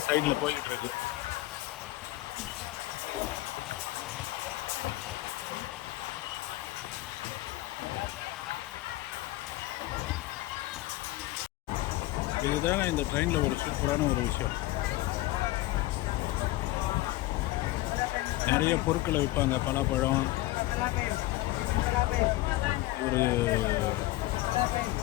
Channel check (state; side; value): quieter; right; 18.3 dB